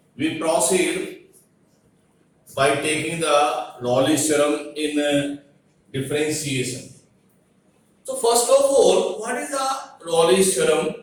we proceed by taking the Raleigh's theorem in differentiation. So first of all, what is the Raleigh's theorem?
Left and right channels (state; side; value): identical; both; correlation 1.00